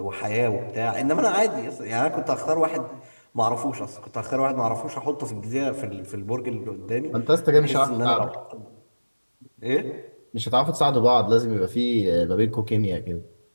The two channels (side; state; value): both; inverted; correlation -1.00